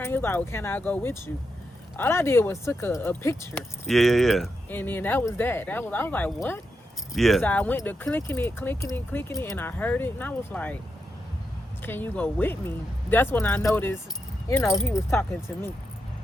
He was like, well, can I go with you? All I did was took a picture. Yeah. And then that was that. I was like, what? Yeah. So I went to clicking it, and I heard it, and I was like, can you go with me? That's when I noticed, he was talking to me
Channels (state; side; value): normal; both; correlation 0.85